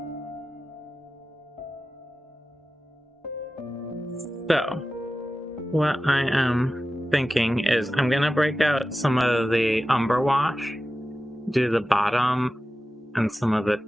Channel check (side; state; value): both; normal; correlation 0.94